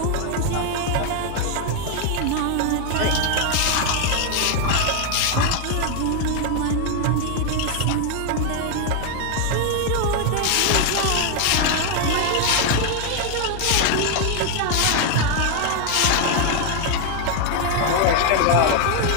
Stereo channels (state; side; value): different; both; correlation 0.01